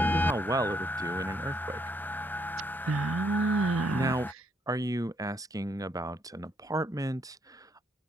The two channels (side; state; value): both; normal; correlation 0.72